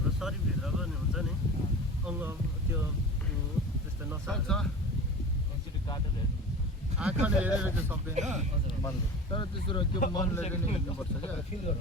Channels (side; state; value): both; normal; correlation 0.35